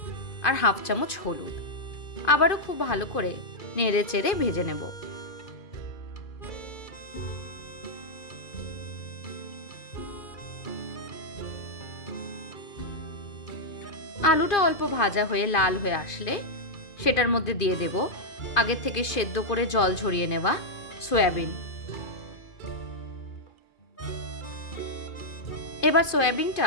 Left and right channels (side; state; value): right; late; 2.5 ms